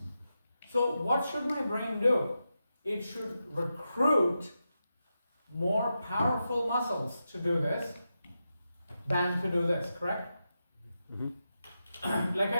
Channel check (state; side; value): inverted; both; correlation -0.89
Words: So what should my brain do? It should recruit more powerful muscles to do this than to do this, correct? Like